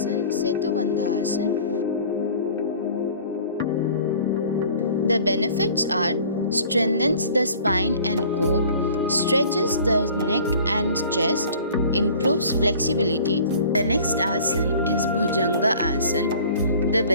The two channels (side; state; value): both; inverted; correlation -0.48